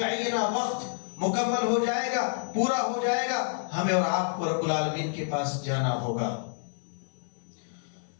وقت مکمل ہو جائے گا، پورا ہو جائے گا، ہمیں اور آپ کو رب العالمین کے پاس جانا ہوگا۔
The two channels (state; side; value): silent; right; 56 dB below the other